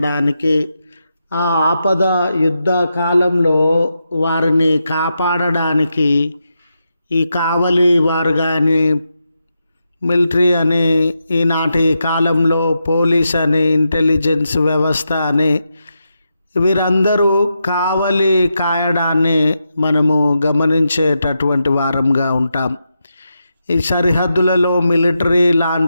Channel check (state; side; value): inverted; both; correlation -0.86